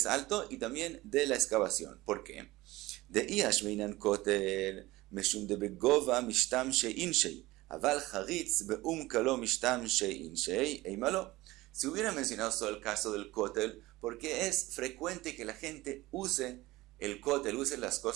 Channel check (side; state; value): left; quieter; 19.0 dB